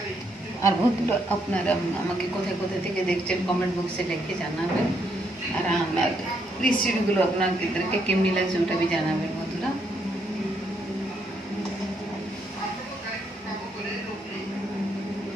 আর বন্ধুরা আপনারা আমাকে কোথায় কোথায় থেকে দেখছেন কমেন্ট বক্সে লিখে জানাবেন, আর আমার রেসিপিগুলো আপনাদেরকে কেমনি লাগছে ওটা भी জানাবেন বন্ধুরা।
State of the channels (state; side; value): normal; both; correlation 0.75